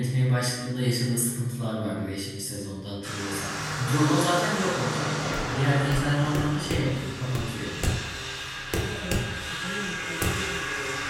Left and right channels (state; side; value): identical; both; correlation 1.00